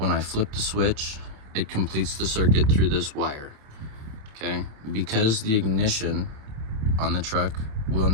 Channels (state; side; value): late; left; 27 ms